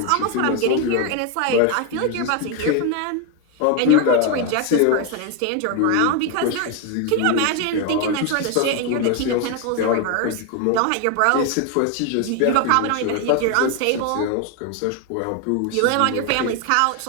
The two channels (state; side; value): different; both; correlation 0.01